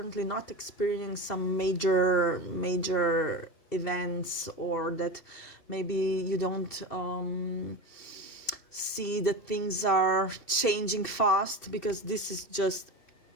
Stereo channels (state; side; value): late; right; 2.7 ms